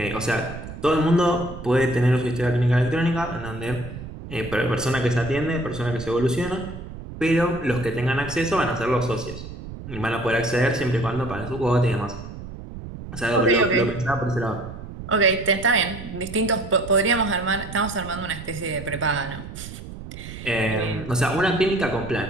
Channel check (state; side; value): noise; right; rumble, 11 dB below the sound